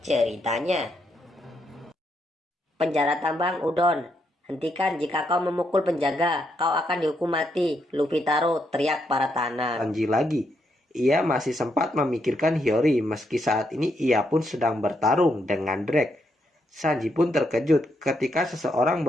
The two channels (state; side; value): normal; both; correlation 0.78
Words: ceritanya. Penjara tambang Udon. Hentikan jika kau memukul penjaga, kau akan dihukum mati. Luffy Taro teriak para tanah. Sanji lagi. Ia masih sempat memikirkan Hiyori meski saat ini ia pun sedang bertarung dengan Drake. Sanji pun terkejut ketika seseorang